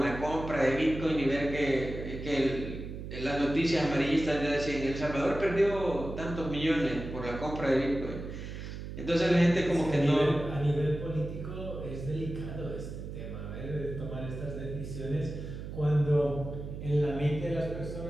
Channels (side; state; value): right; noise; hum, 8 dB below the sound